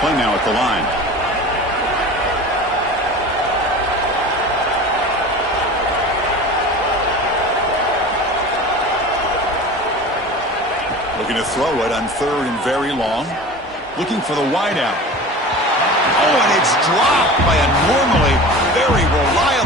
play now at the line. Looking to throw it on third and very long. Looking for the wideout. Oh, and it's dropped by a normally very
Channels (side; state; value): both; normal; correlation 0.36